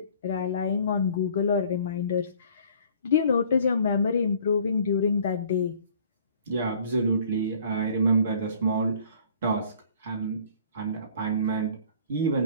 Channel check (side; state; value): both; inverted; correlation -0.53